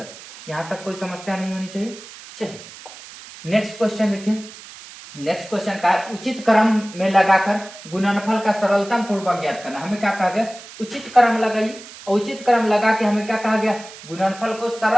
यहाँ तक कोई समस्या नहीं होनी चाहिए। चलिए नेक्स्ट क्वेश्चन देखिए, नेक्स्ट क्वेश्चन का है उचित क्रम में लगाकर गुणनफल का सरलतम पूर्वक ज्ञात करना। हमें क्या कहा गया, उचित क्रम लगाइए, उचित क्रम लगा के हमें क्या कहा गया, गुणनफल को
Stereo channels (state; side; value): noise; right; hiss, 17 dB below the sound